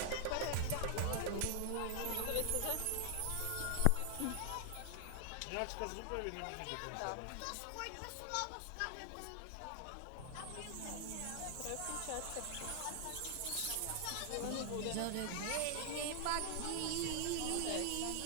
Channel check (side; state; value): both; different; correlation 0.00